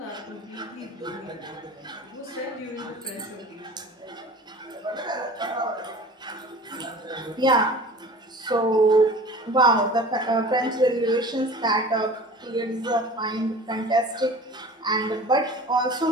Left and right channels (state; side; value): normal; both; correlation 0.41